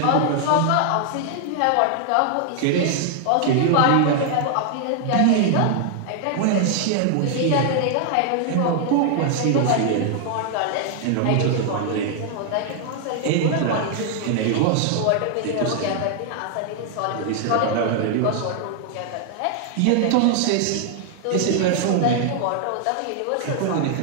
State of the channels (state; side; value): different; both; correlation 0.00